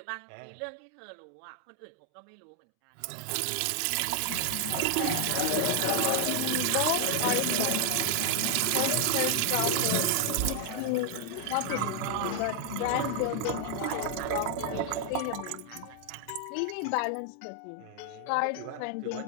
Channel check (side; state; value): both; different; correlation 0.00